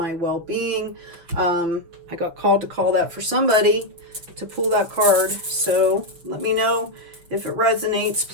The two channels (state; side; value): late; left; 6.0 ms